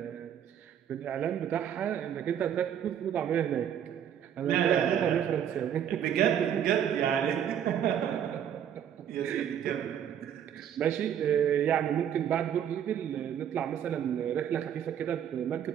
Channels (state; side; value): quieter; left; 9.3 dB